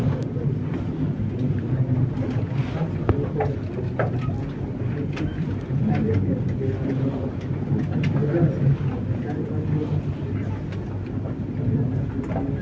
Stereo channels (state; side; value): identical; both; correlation 1.00